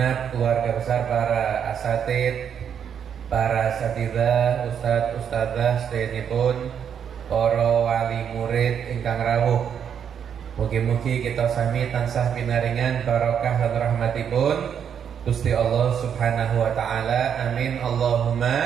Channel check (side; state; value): left; quieter; 8.1 dB